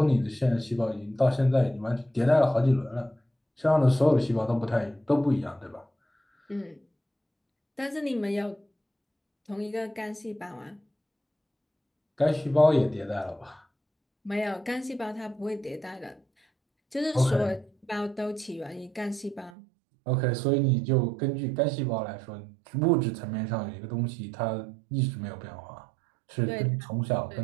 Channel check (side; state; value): left; drops out; at 19.5 s